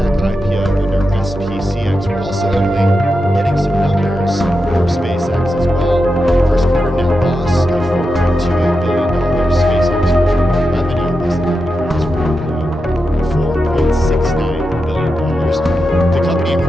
IPO under SPCX. We're also, Emily, getting some numbers from SpaceX as well. First quarter net loss of $4.28 billion. SpaceX first quarter revenue as the company files for IPO, $4.69 billion. The company,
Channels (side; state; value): both; normal; correlation 0.89